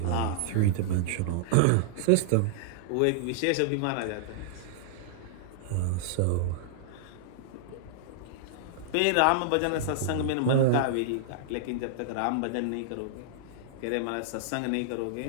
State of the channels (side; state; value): both; different; correlation -0.01